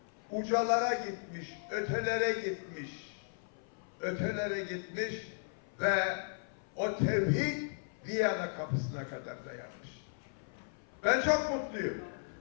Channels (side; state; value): right; silent; 54 dB below the other